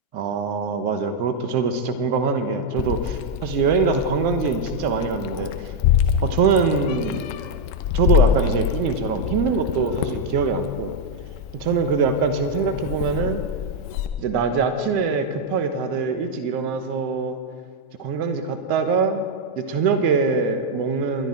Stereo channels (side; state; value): right; late; 3.8 ms